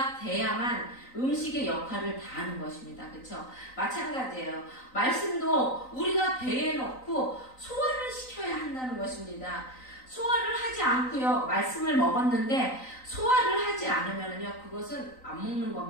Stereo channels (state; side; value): late; right; 3.9 ms